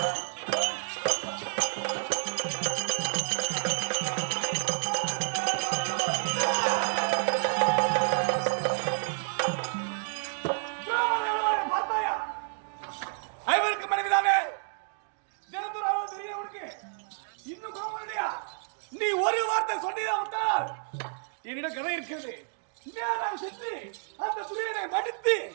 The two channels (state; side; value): silent; left; digital silence